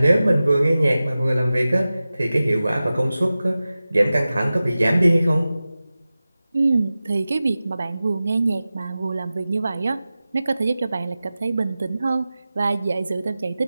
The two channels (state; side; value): inverted; both; correlation -0.96